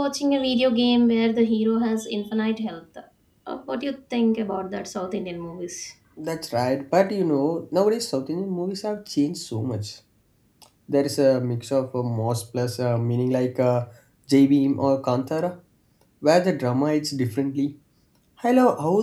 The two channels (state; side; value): identical; both; correlation 1.00